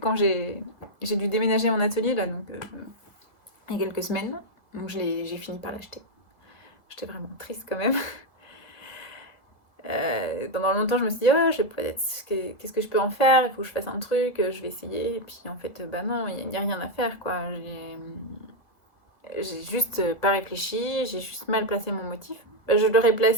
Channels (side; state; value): right; late; 2.0 ms